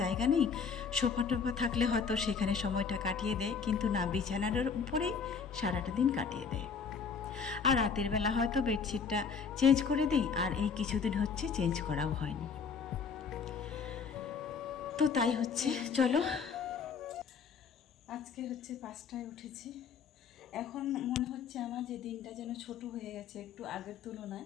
জায়গা নেই। সোফা টোফা থাকলে হয়তো সেখানে সময়টা কাটিয়ে দেয়, কিন্তু না, বিছানার উপরেই সারাটা দিন কাটিয়ে দেয়। আর রাতের বেলা হয়তো বেডশিটটা চেঞ্জ করে দিই, আর এই কিছুদিন হচ্ছে চেঞ্জ করাও হয়নি। তো তাই হচ্ছে। চলো, আজকে হচ্ছে 5টায় উঠেছি। এখন মনে হচ্ছে আমার যে দিনটা যেন ছোট হয়ে গেছে একটু আগের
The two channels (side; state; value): right; quieter; 5.9 dB